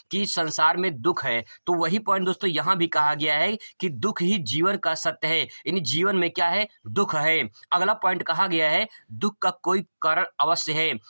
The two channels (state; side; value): inverted; both; correlation -1.00